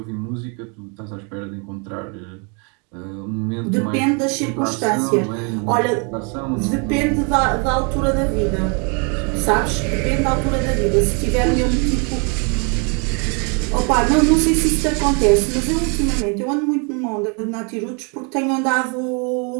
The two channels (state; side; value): quieter; left; 35.4 dB